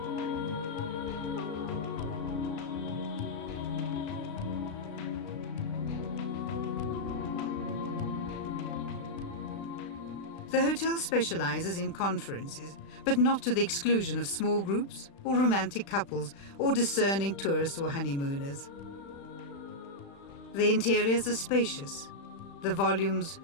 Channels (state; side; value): late; right; 36 ms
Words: The hotel specializes in conferences, but not to the exclusion of small groups or romantic couples or discerning tourists or honeymooners. The interiors are spacious, the volumes